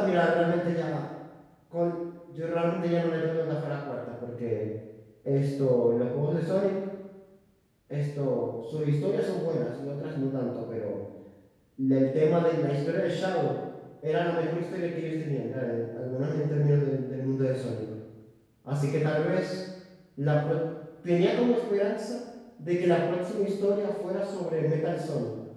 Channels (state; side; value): identical; both; correlation 1.00